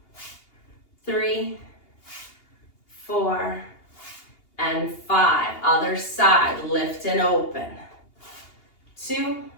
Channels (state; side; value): late; right; 2.8 ms